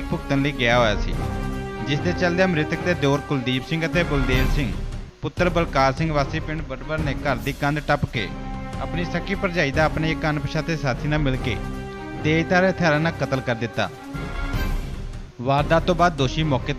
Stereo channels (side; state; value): both; identical; correlation 1.00